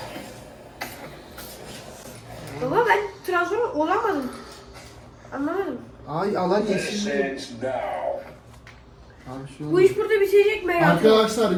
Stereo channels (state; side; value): identical; both; correlation 1.00